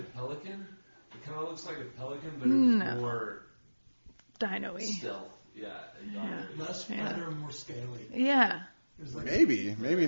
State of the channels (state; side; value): inverted; both; correlation -1.00